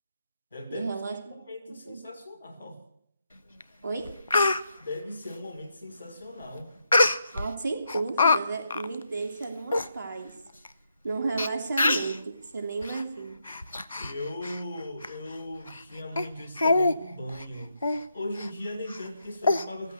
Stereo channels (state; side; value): inverted; both; correlation -0.81